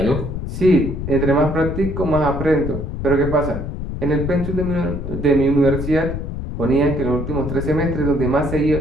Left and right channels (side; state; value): left; noise; rumble, 5 dB below the sound